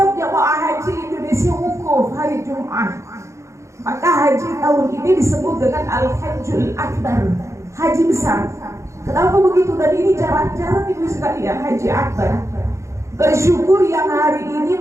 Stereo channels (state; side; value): late; left; 0.14 ms